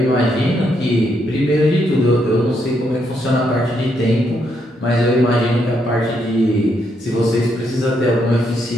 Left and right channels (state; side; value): normal; both; correlation 0.77